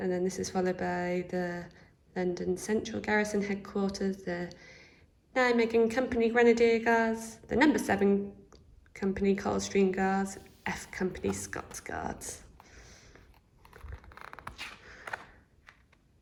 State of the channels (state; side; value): identical; both; correlation 1.00